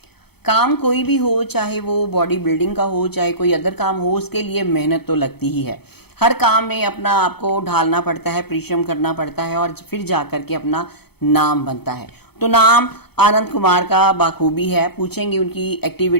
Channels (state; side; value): late; right; 0.97 ms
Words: काम कोई भी हो, चाहे वो बॉडी बिल्डिंग का हो चाहे कोई अदर काम हो, उसके लिए मेहनत तो लगती ही है। हर काम में अपना आपको ढालना पड़ता है, परिश्रम करना पड़ता है और फिर जा करके अपना नाम बनता है। तो नाम आनंद कुमार का बाखूबी है। पूछेंगे उनकी